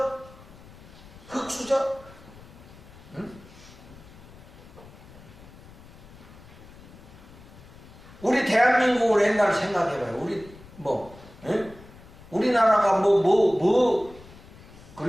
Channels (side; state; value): left; noise; rumble, 20 dB below the sound